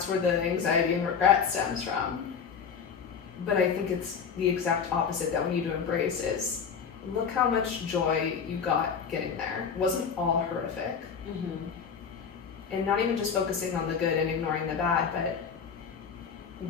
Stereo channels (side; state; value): right; quieter; 6.6 dB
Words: where the anxiety and regret stems from. But I think it's the exact opposite that we need to embrace is, look how much joy you got getting there. It wasn't all horrific. And not even just focusing on the good and ignoring the bad, but